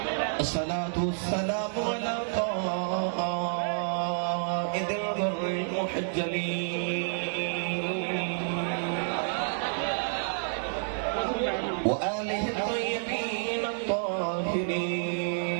الصلاة والسلام على قائد الغر المحجلين وآله الطيبين الطاهرين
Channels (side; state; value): left; silent; digital silence